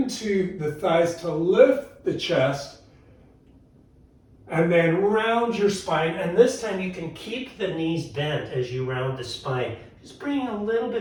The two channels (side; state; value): both; identical; correlation 1.00